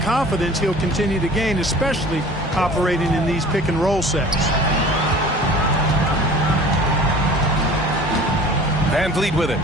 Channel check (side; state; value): both; normal; correlation 0.44